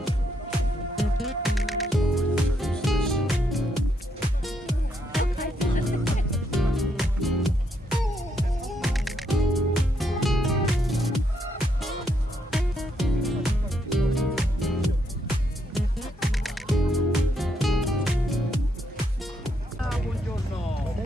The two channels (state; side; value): normal; both; correlation 0.76